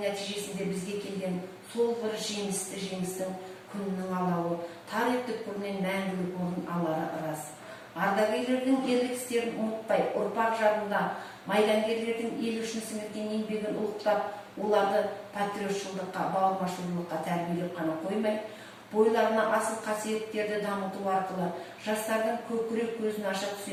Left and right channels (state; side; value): identical; both; correlation 1.00